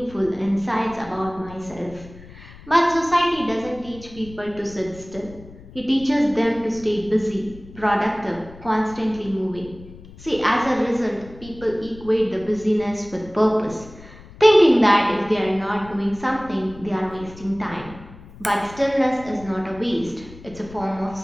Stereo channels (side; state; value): left; noise; rumble, 18 dB below the sound